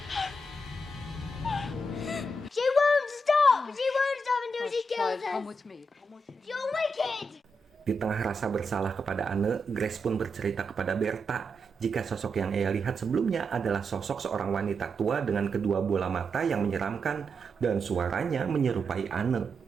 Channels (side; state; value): both; normal; correlation 0.84